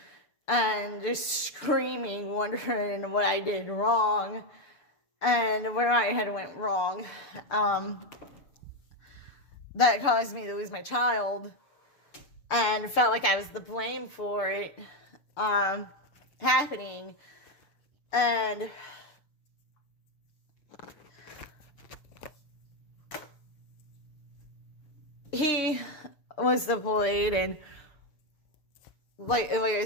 and just screaming, wondering what I did wrong and where I had went wrong. That caused me to lose my child, and felt like I was the blame for it happening. And he was deployed, and like I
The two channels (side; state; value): right; late; 6.8 ms